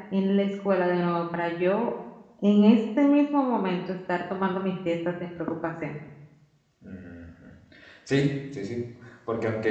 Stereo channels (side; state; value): both; identical; correlation 1.00